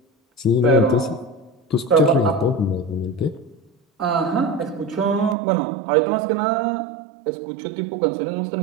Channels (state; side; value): drops out; left; at 5.4 s